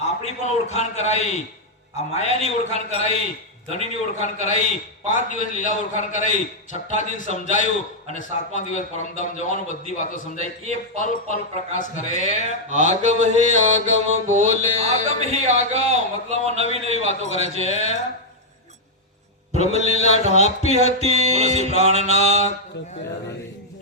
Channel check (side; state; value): both; normal; correlation -0.04